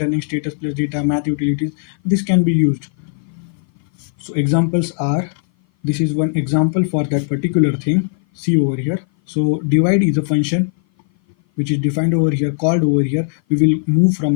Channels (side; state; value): right; silent; 57 dB below the other